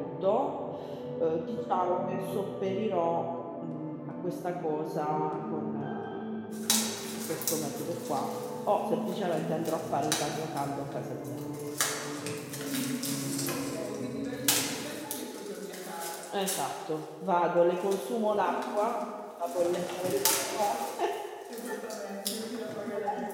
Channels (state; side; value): identical; both; correlation 1.00